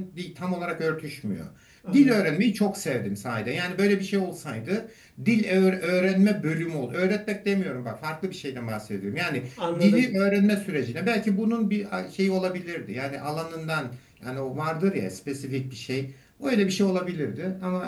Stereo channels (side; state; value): both; identical; correlation 1.00